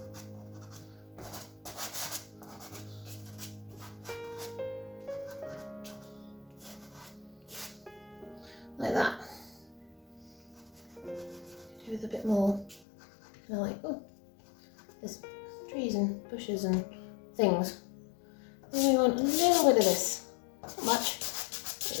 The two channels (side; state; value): right; drops out; at 12.8 s